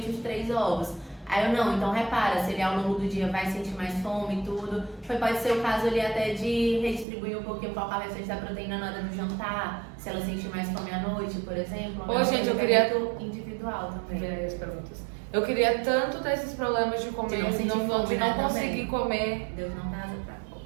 os 3 ovos. Aí eu não, então repara, se ele ao longo do dia vai sentir mais fome e tudo. Pode ser o caso ali até de redistribuir um pouquinho, colocar o restante da proteína na hora do jantar, se ela sentir mais fome à noite, por exemplo. Ô, gente, eu queria... individual também. As perguntas. Eu queria tanto ter esses problemas de comer, de não conseguir comer. Deus não dá asa pra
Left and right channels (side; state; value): left; drops out; at 7.1 s